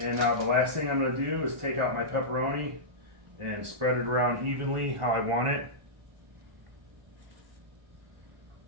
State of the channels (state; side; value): late; left; 1.4 ms